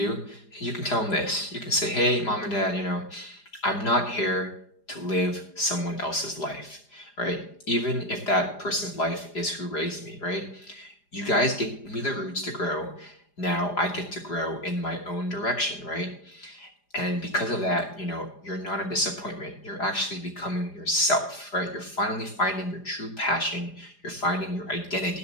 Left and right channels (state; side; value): late; right; 4.9 ms